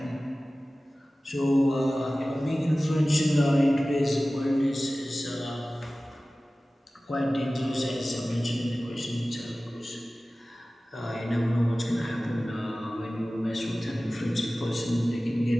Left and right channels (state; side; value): normal; both; correlation 0.97